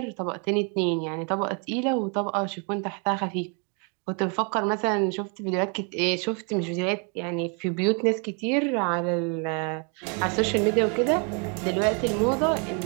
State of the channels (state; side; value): quieter; left; 36.9 dB